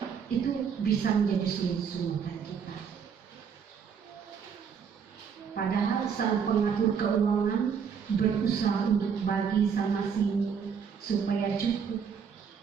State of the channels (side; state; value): left; quieter; 6.8 dB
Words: Itu bisa menjadi sungut-sungutan kita. Padahal sang pengatur keuangan berusaha untuk bagi sana sini supaya cukup